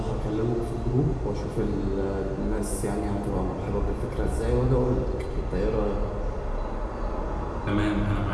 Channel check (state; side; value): identical; both; correlation 1.00